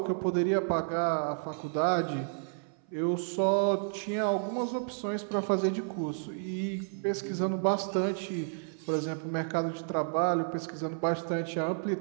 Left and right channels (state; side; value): silent; left; 57 dB below the other